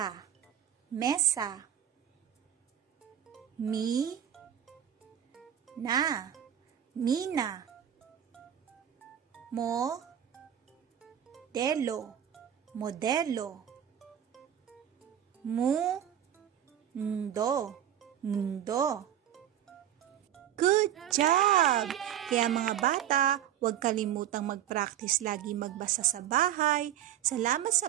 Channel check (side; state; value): left; quieter; 10.6 dB